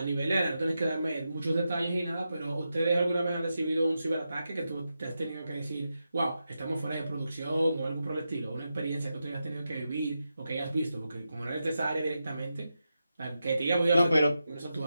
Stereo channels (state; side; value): inverted; both; correlation -0.89